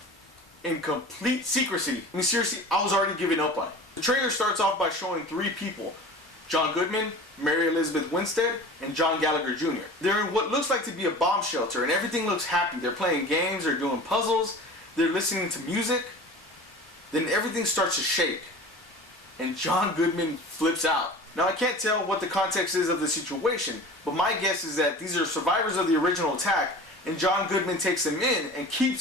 In complete secrecy. I mean, seriously, I was already giving up on it. The trailer starts off by showing three people: John Goodman, Mary Elizabeth Winstead, and John Gallagher Jr. They're in what looks like to be a bomb shelter, and everything looks happy. They're playing games, they're doing puzzles, they're listening to music. Then everything starts to shake, and John Goodman flips out. Now, I can't tell what the context is of the situation, but my guess is that these are survivors of the original attack, and John Goodman takes them in and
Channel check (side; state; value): both; normal; correlation 0.38